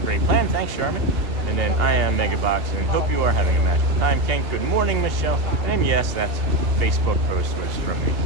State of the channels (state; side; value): late; left; 2.8 ms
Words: plan. Thanks, Sherman. And then I am Megabox, and hope you are having a magical time. Kent, good morning, Michelle. And yes, that's Facebook post was from me.